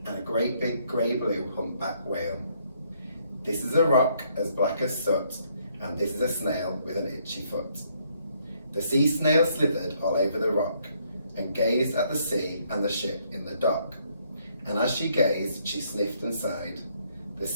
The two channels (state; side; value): inverted; both; correlation -0.70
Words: and a great big grey-blue humpback whale. This is a rock as black as soot, and this is a snail with an itchy foot. The sea snail slithered all over the rock and gazed at the sea and the ship in the dock. And as she gazed, she sniffed and sighed. The